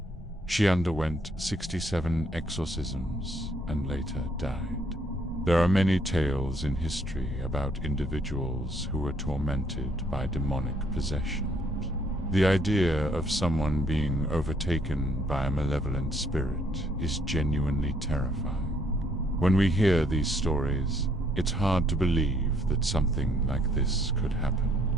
She underwent 67 exorcisms and later died. There are many tales in history about individuals who were tormented by demonic possession. The idea of someone being overtaken by a malevolent spirit is genuinely terrifying. When we hear these stories, it's hard to believe that something like this could happen.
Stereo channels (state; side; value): normal; both; correlation 0.67